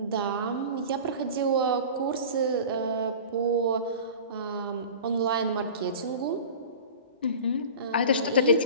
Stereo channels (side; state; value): both; inverted; correlation -0.37